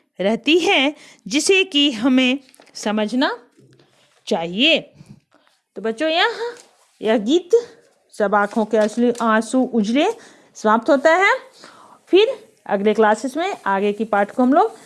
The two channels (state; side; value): identical; both; correlation 1.00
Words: रहती है, जिसे कि हमें समझना चाहिए। तो बच्चों, यह गीत सब आँखों के असली आंसू उजले समाप्त होता है। फिर अगले क्लासेस में आगे की पाठ को हम लोग